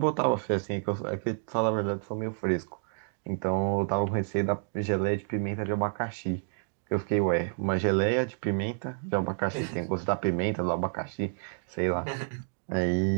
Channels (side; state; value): left; silent; digital silence